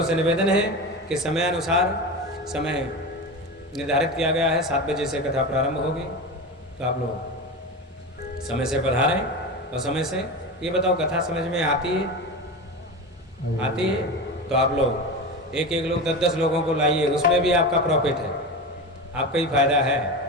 से निवेदन है कि समय अनुसार समय निर्धारित किया गया है, 7 बजे से कथा प्रारंभ होगी, तो आप लोग समय से पधारें। और समय से ये बताओ कथा समझ में आती है? आती है तो आप लोग एक लोग 10 लोगों को लाइए, उसमें भी आपका प्रॉफिट है, आपका ही फायदा है।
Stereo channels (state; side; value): normal; both; correlation 0.24